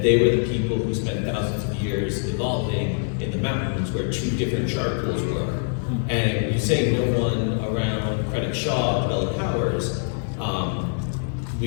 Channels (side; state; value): right; silent; 63 dB below the other